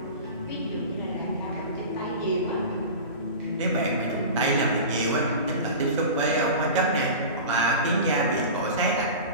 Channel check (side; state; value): both; inverted; correlation -0.32